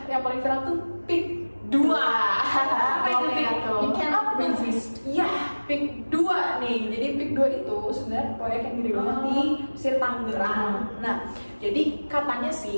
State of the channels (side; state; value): both; inverted; correlation -1.00